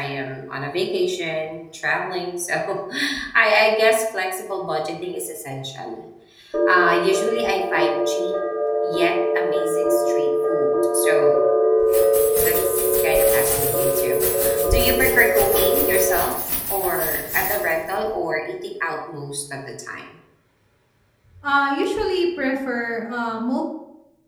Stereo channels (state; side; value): identical; both; correlation 1.00